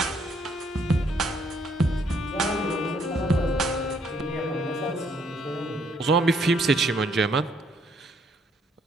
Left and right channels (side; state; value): both; normal; correlation 0.68